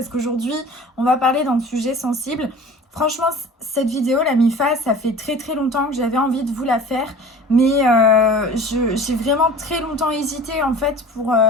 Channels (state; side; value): normal; both; correlation 0.41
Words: qu'aujourd'hui, on va parler d'un sujet sensible. Franchement, cette vidéo, la MIFA, ça fait très très longtemps que j'avais envie de vous la faire, mais j'ai vraiment très longtemps hésité en fait pour